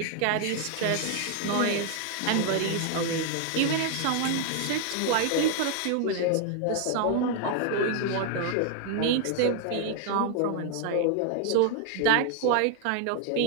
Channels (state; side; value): different; both; correlation 0.00